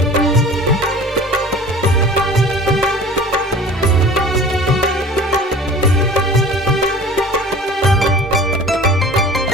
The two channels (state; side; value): normal; both; correlation 0.43